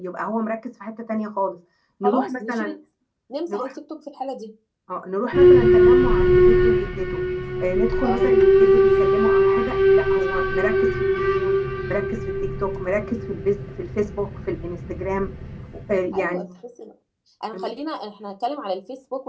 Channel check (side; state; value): both; identical; correlation 1.00